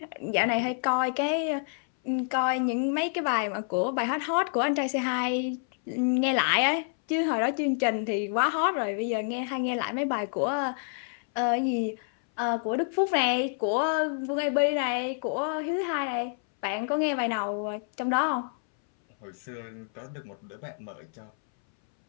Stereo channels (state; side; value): silent; right; 59 dB below the other